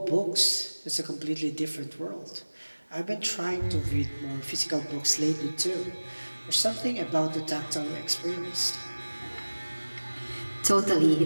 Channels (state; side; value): inverted; both; correlation -1.00